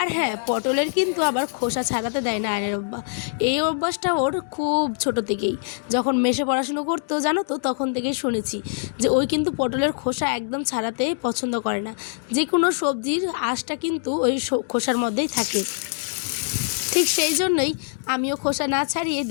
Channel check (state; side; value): silent; right; digital silence